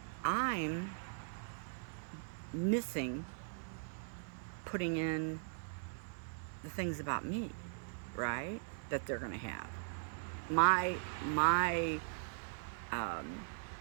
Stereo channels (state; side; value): silent; left; digital silence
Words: I'm missing putting in the things about me, right? That they're going to have. My um